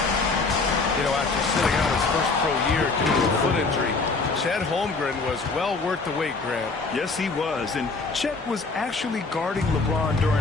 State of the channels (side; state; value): right; quieter; 3.9 dB